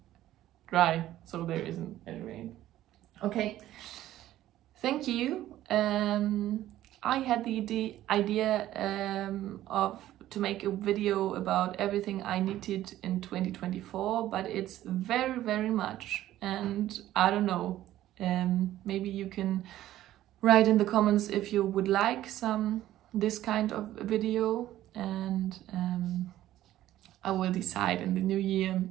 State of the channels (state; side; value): quieter; left; 13.8 dB